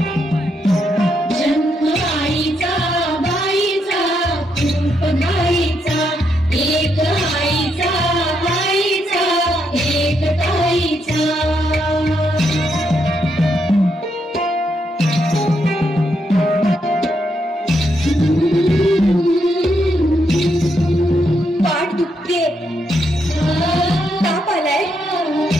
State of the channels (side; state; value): both; normal; correlation 0.79